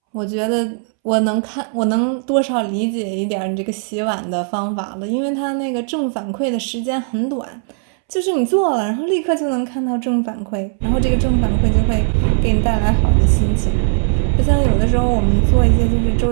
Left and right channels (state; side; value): silent; left; 66 dB below the other